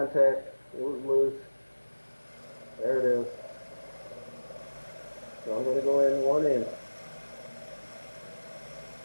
It was loose. There it is. So I'm gonna go in 1 inch.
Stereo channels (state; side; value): inverted; both; correlation -1.00